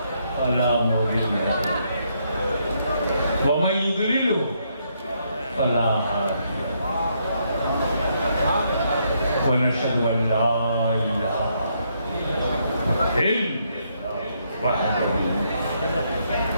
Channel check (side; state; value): both; inverted; correlation -0.75